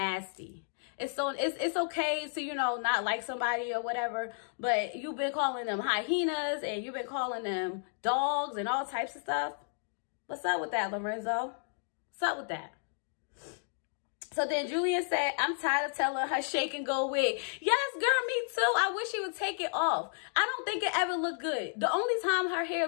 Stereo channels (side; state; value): right; silent; digital silence